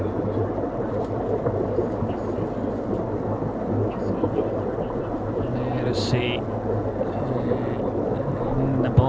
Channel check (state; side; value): identical; both; correlation 1.00